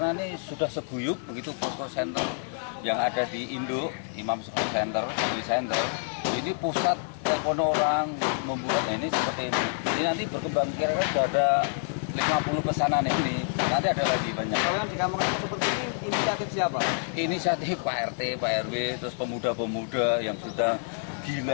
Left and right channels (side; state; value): right; silent; digital silence